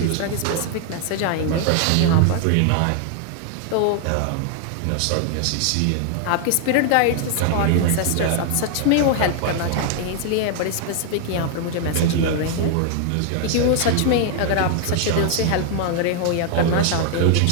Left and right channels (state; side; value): different; both; correlation 0.00